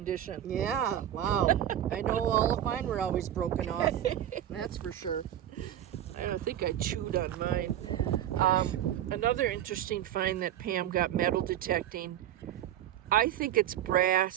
Yeah, wow. I know all of mine were always broken off. That's for sure. I don't think I chewed on mine. Another interesting find that Pam got metal detecting. I think it's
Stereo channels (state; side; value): quieter; left; 11.6 dB